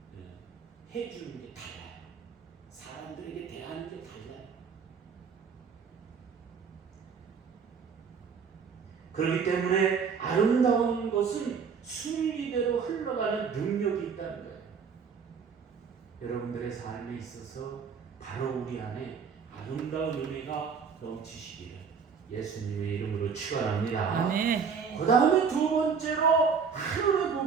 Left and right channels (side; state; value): left; quieter; 6.1 dB